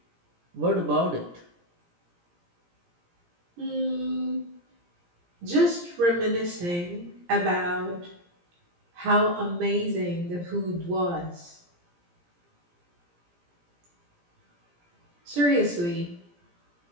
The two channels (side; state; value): left; late; 17 ms